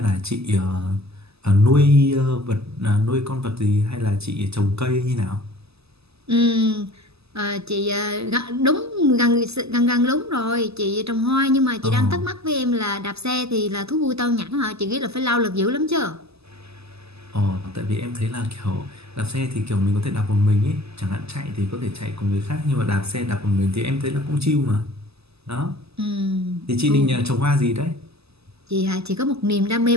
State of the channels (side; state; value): left; late; 0.79 ms